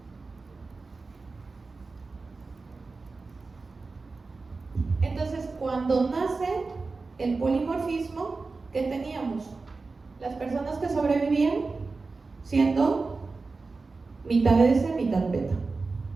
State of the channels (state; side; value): quieter; left; 4.0 dB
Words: Entonces, cuando nace el polimorfismo, ¿qué teníamos? Las personas que sobrevivían siendo mitad S, mitad beta.